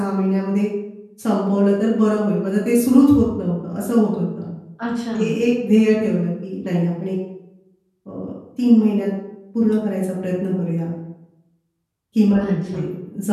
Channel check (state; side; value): identical; both; correlation 1.00